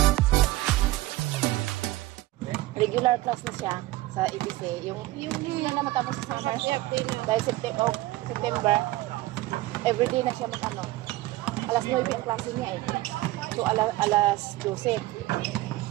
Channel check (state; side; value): quieter; left; 17.8 dB